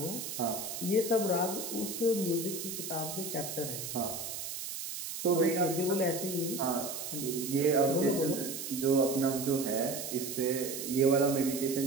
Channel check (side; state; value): right; noise; hiss, 6 dB below the sound